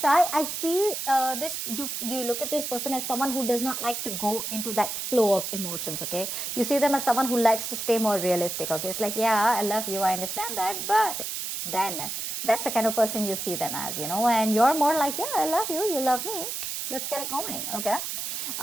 I feel this, you look at this person as someone who does not like to go into that flow of emotions. Okay, you see them as someone who likes to stay more realistic. Okay, it's like, yeah, I love you, I understand that, but then that's the kind of person you see them as, you know, and you're more like, yeah, I love you, you love me, let's get it going. Okay,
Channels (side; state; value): right; noise; hiss, 4 dB below the sound